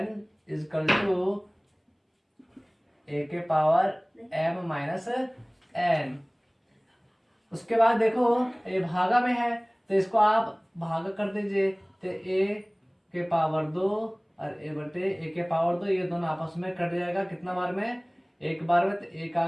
is equal to a के पावर m माइनस n। उसके बाद देखो ये भागा में है तो इसको आप भागा कर दीजिए। तो a के पावर 2 और a के पावर 2, ये दोनों आपस में कट जाएगा। कितना बार में, एक बार में। तो 1 आ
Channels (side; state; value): both; identical; correlation 1.00